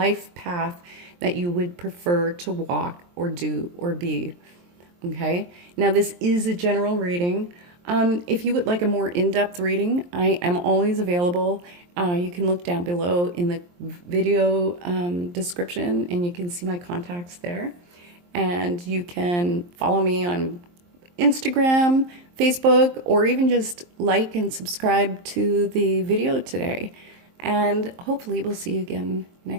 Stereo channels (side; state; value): left; late; 23 ms